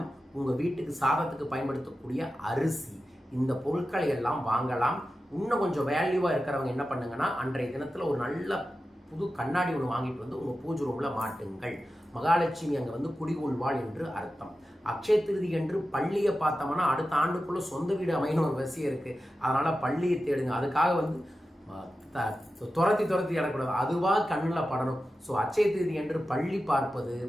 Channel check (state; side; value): normal; both; correlation 0.92